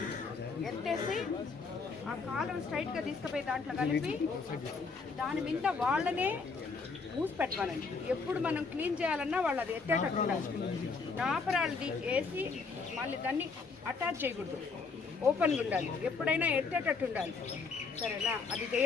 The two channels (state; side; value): quieter; right; 4.7 dB